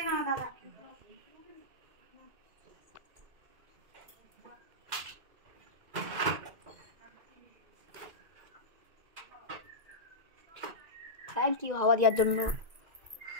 না দাদা। থ্যাংক ইউ হাওয়া দেওয়ার জন্য।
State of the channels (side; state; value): left; late; 1.7 ms